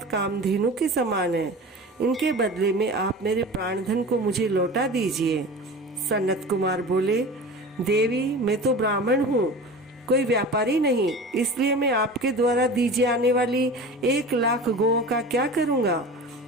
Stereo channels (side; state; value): both; normal; correlation 0.35